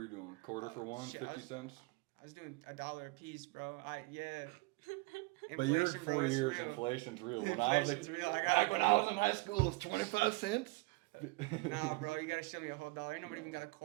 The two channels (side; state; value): left; quieter; 25.1 dB